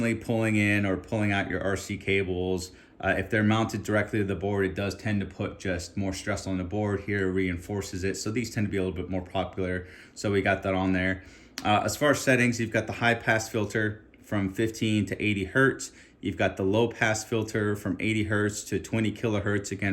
pulling in or pulling out your RC cables. If they're mounted directly to the board, it does tend to put just more stress on the board. Here reinforces it, so these tend to be a little bit more popular, so we got that on there. As far as settings, you've got the high pass filter from 15 to 80 hertz. You've got the low pass filter from 80 hertz to 20 kilohertz,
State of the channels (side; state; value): both; identical; correlation 1.00